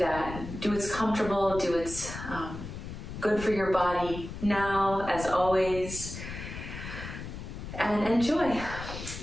Do what's comfortable, do what's good for your body now, as always. And enjoy.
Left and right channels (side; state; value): left; noise; rumble, 9 dB below the sound